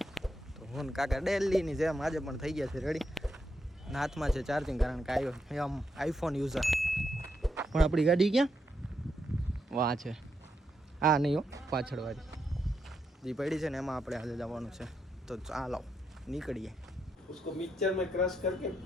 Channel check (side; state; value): both; normal; correlation 0.81